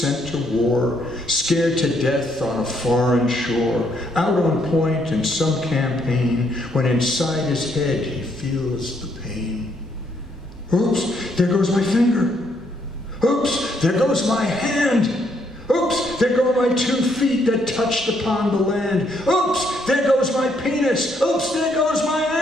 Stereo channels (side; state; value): both; normal; correlation 0.72